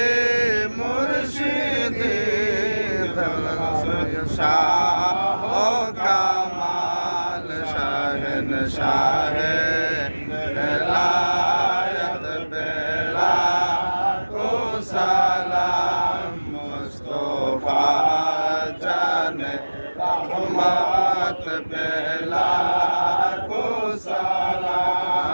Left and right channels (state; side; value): inverted; both; correlation -1.00